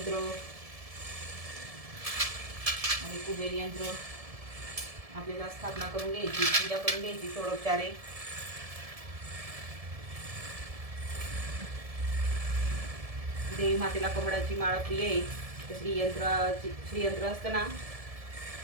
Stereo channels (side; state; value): left; late; 1.7 ms